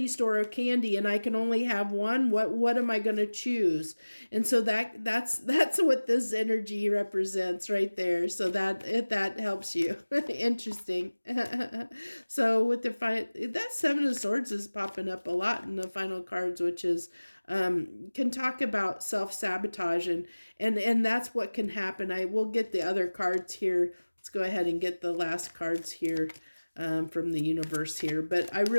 store of candy, and I can only have one. What am I going to choose? And so that's what this energy represents right there. So that helps you. Interesting. So with that Seven of Swords is popping up a lot in the final cards, which is can talk about self-sabotage, and that's what can happen. I will get the other cards here. Let's go ahead and get the last cards here from the universe here. But I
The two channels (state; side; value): inverted; both; correlation -1.00